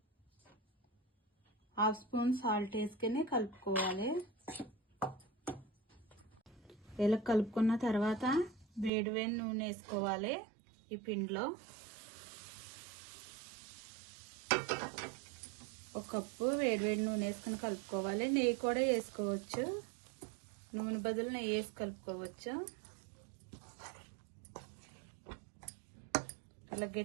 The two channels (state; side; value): drops out; left; at 8.9 s